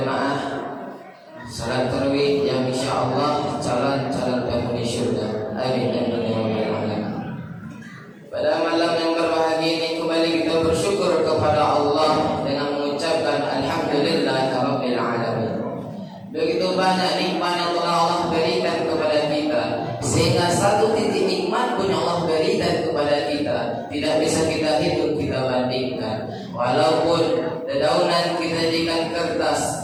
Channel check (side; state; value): both; identical; correlation 1.00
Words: salat tarawih yang insyaallah calon-calon penghuni syurga. Amin amin ya rabbal alamin. Pada malam yang berbahagia ini kembali kita bersyukur kepada Allah dengan mengucapkan alhamdulillahirabbil alamin. Begitu banyak nikmat yang telah Allah berikan kepada kita, sehingga satu titik nikmat pun Allah berikan kepada kita tidak bisa kita hitung, kita bandingkan. Walaupun dedaunan kita jadikan